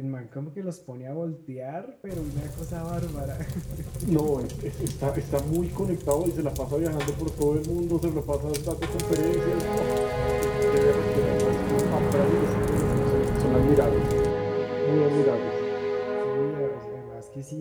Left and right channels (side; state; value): both; identical; correlation 1.00